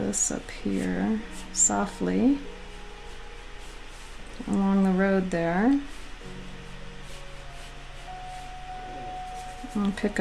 up here softly along the road there. I'll pick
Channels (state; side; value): identical; both; correlation 1.00